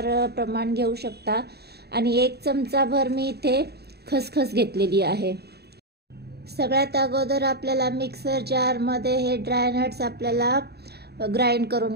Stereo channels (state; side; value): late; left; 0.47 ms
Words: प्रमाण घेऊ शकता. आणि 1 चमचाभर मी इथे खसखस घेतलेली आहे. सगळ्यात अगोदर आपल्याला मिक्सर जारमध्ये हे ड्रायनट्स आपल्याला ग्राइंड